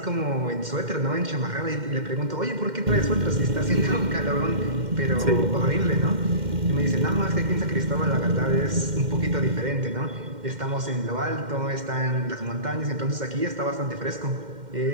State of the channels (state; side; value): late; left; 2.1 ms